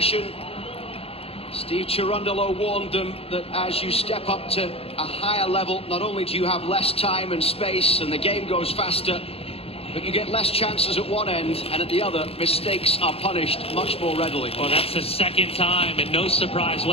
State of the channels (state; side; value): late; right; 0.28 ms